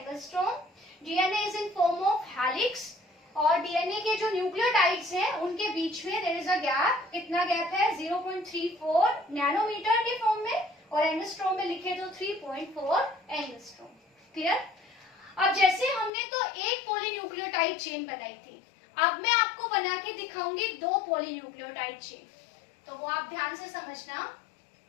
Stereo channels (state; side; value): drops out; right; at 16.1 s